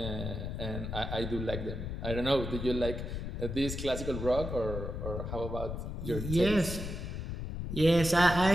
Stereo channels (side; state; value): left; noise; rumble, 5 dB below the sound